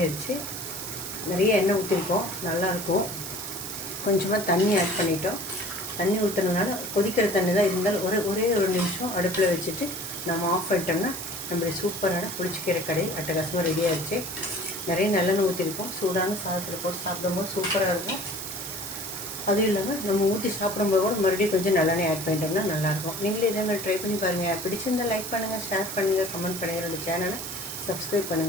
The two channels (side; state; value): right; noise; hiss, 7 dB below the sound